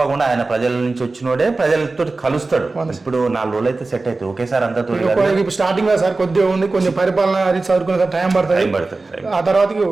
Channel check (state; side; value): quieter; left; 3.5 dB